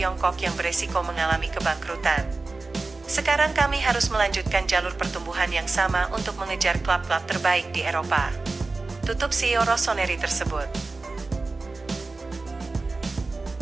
yang beresiko mengalami kebangkrutan. Sekarang kami harus melanjutkan jalur pertumbuhan yang sama untuk mengejar klub-klub terbaik di Eropa. Tutup CEO Rossoneri tersebut.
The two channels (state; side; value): quieter; left; 3.6 dB